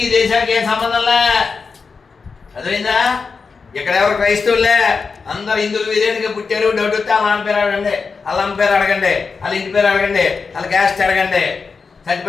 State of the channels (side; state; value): right; quieter; 4.9 dB